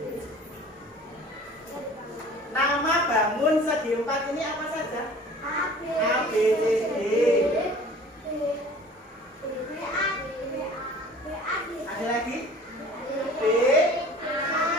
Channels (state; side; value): normal; both; correlation 0.47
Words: Nama bangun segi 4 ini apa saja? A, B, C, D. Ada lagi? B,